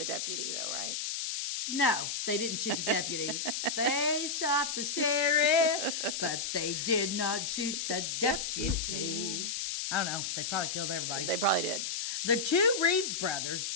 deputy, though, right? No, they didn't shoot the deputy. They shot the sheriff, but they did not shoot the deputy. I don't know. They probably killed everybody. They probably did. The two Reeves brothers,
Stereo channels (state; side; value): noise; left; hiss, 2 dB below the sound